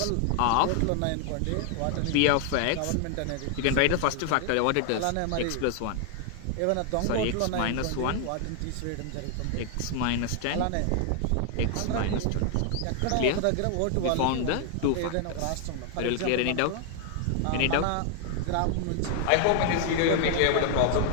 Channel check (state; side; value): different; both; correlation 0.00